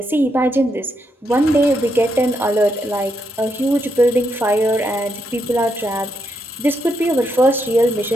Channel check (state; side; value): normal; both; correlation 0.80